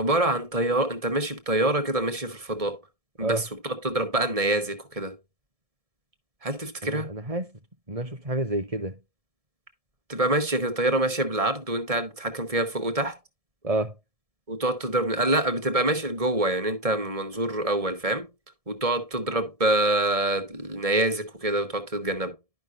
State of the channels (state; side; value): late; left; 1.7 ms